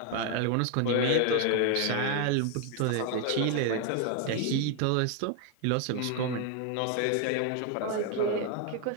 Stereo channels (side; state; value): both; different; correlation 0.01